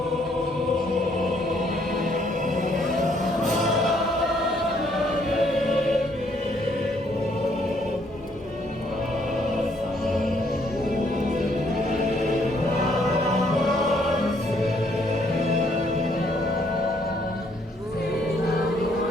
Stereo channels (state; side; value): normal; both; correlation 0.68